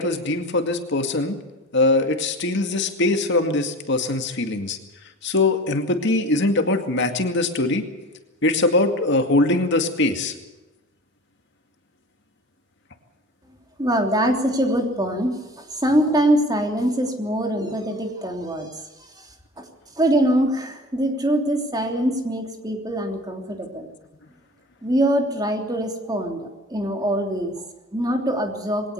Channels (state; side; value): normal; both; correlation 0.38